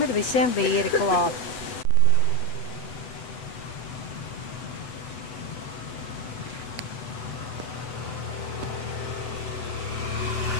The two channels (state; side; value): late; right; 8.2 ms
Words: ir visiem vīri klāt.